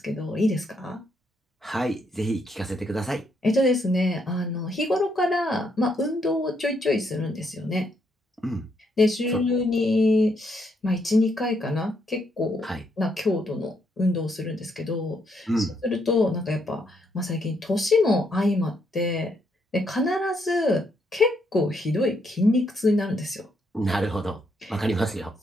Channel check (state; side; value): normal; both; correlation 0.75